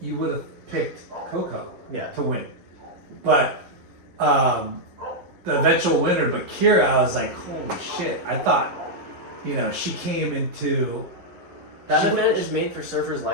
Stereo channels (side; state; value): left; late; 11 ms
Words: would have picked Coco to win, but the eventual winner, but Kira, I was like, holy shit! I thought, you know, she came into That event is made for surfers